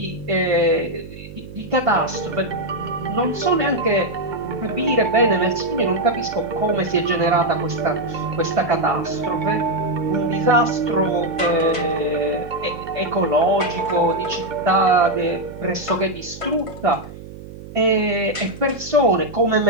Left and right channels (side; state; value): right; noise; hum, 15 dB below the sound